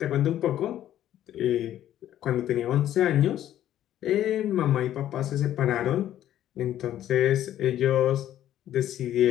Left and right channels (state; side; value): quieter; right; 12.0 dB